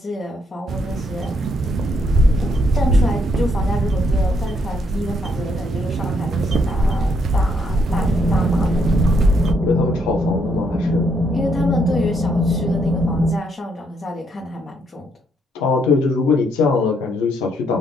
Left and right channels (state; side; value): normal; both; correlation 0.73